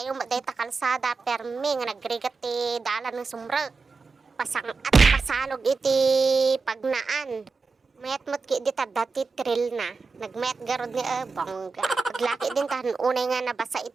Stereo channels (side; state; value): left; quieter; 4.4 dB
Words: yung dayta kalsada, permi nga nagrigat ti dalan ng sumrek. Pasang at pasalog iti pagnaan. Mayat mo't ki di dati trail na. Nagmayat garod ni bongga. Paglaki din tahan unay nga nabasa